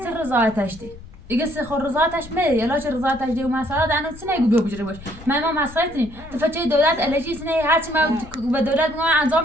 رضایتش دی دیگه سخور رضایتش میده یلا چه رضایتش دی و مسئله دانو سینه گو بجره باش ما مسئله تنی تفچه دولت الهی سینه هرچی ما به دولت میگم انجام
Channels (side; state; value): left; noise; rumble, 17 dB below the sound